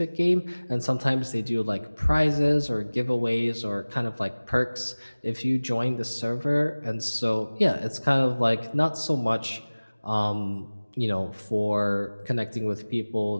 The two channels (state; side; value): inverted; both; correlation -1.00